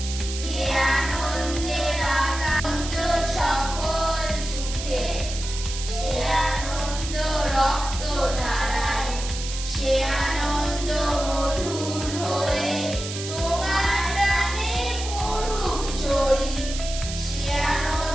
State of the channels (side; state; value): right; noise; hiss, 8 dB below the sound